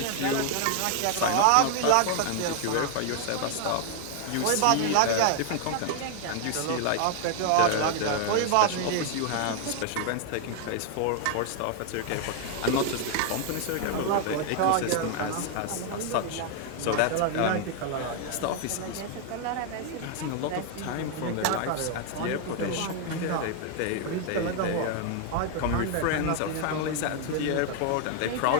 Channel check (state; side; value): different; both; correlation 0.00